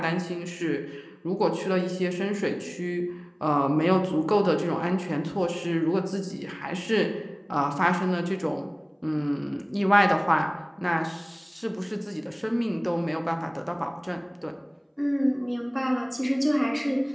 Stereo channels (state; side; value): identical; both; correlation 1.00